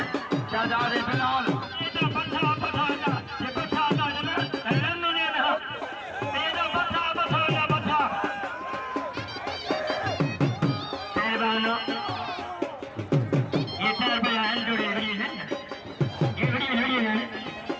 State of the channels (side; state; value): both; identical; correlation 1.00